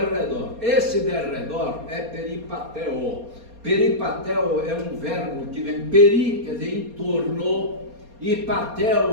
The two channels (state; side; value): late; left; 4.3 ms